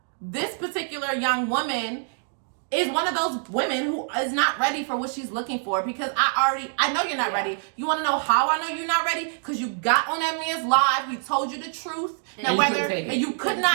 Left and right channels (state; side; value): silent; left; digital silence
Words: this particular young woman is one of those women who is not ready for what she's looking for, because I know you're not ready. You want to know how I know you're not ready? Because you got on that man's live, he told you the truth, and you could